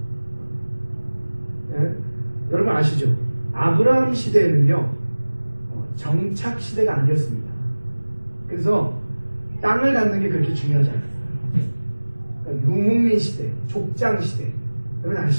예? 여러분 아시죠? 아브라함 시대에는요, 정착 시대가 아니었습니다. 그래서 땅을 갖는 게 그렇게 중요하지 않았어요. 그러니까 유목민 시대, 족장 시대, 여러분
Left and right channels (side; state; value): both; inverted; correlation -1.00